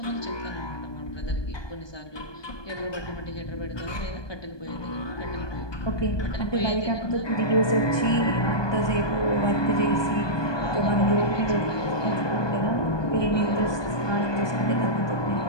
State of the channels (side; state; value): right; late; 1.2 ms